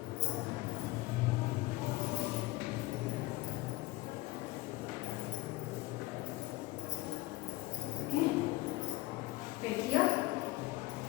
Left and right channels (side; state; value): right; quieter; 20.4 dB